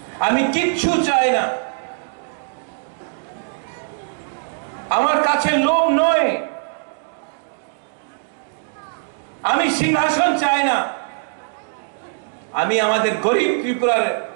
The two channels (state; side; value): silent; left; digital silence